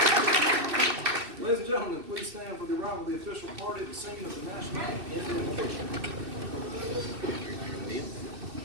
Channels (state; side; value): late; left; 2.6 ms